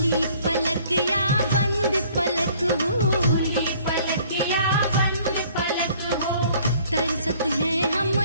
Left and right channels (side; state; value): both; inverted; correlation -0.57